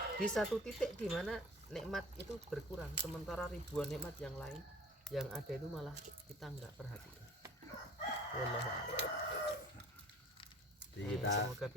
di satu titik di mana nikmat itu berkurang, sementara ribuan nikmat yang lain yang ada itu malah kita nggak perhatikan. Wallahu a'lam. Jadi kita Semoga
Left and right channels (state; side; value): normal; both; correlation 0.46